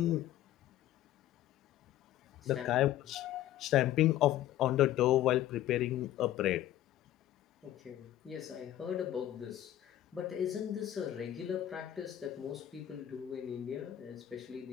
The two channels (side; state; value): right; quieter; 12.8 dB